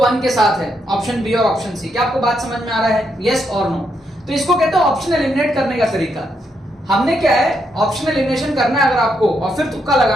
के साथ है, ऑप्शन बी और ऑप्शन सी। क्या आपको बात समझ में आ रहा है? यस और नो? तो इसको कहते हैं ऑप्शन एलिमिनेट करने का तरीका। हमने क्या है, ऑप्शन एलिमिनेशन करना है अगर आपको, और फिर तुक्का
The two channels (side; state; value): both; normal; correlation 0.79